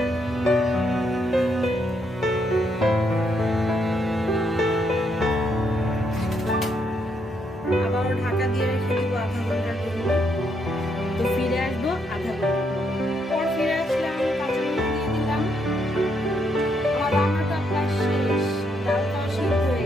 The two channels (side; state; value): both; normal; correlation 0.76